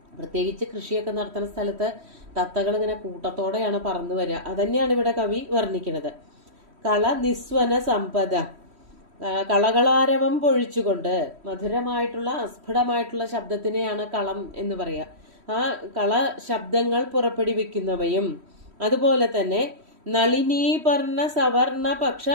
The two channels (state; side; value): late; left; 3.1 ms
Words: പ്രത്യേകിച്ച് കൃഷിയൊക്കെ നടത്തുന്ന സ്ഥലത്ത് തത്തകൾ ഇങ്ങനെ കൂട്ടത്തോടെയാണ് പറന്നു വരിക. അതന്നെയാണ് ഇവിടെ കവി വർണ്ണിക്കുന്നത്. കള നിസ്വന സമ്പദ, കളകളാരവം പൊഴിച്ചുകൊണ്ട്, മധുരമായിട്ടുള്ള അസ്ഫുടമായിട്ടുള്ള ശബ്ദത്തിനെയാണ് കളം എന്ന് പറയുക. ആ കള ശബ്ദങ്ങൾ പുറപ്പെടുവിക്കുന്നവയും അതുപോലെ തന്നെ നളിനീപർണ സവർണ